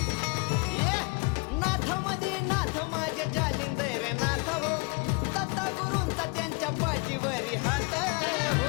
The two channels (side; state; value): right; quieter; 31.2 dB